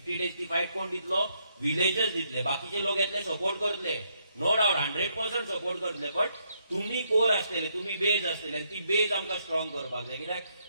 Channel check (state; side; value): inverted; both; correlation -0.75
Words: डेजची फायट कोण दितलो? विलेजस दितले. बाकीचे लोक येतले, सपोर्ट करतले, नो डाउट 100% सपोर्ट करतले. बट तुम्ही कोर आसतले, तुम्ही बेज आसतले, आनी ती बेज आमकां स्ट्रॉंग करपाक जाय. कित्याक